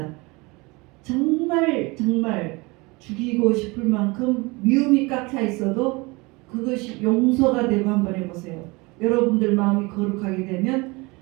정말 죽이고 싶을 만큼 미움이 꽉 차 있어도 그것이 용서가 되고 한번 해보세요. 여러분들 마음이 거룩하게 되면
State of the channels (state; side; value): quieter; left; 25.3 dB